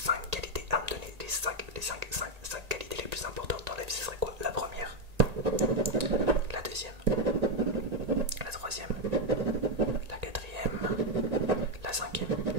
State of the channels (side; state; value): left; late; 1.8 ms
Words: qualités à me donner, les 5 qualités les plus importantes dans la vie, ce serait quoi? La première, la deuxième, la troisième, la quatrième, la cinquième.